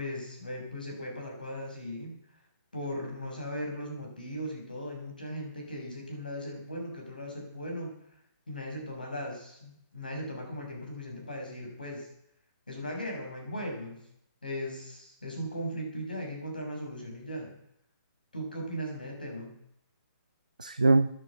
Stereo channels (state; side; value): inverted; both; correlation -0.80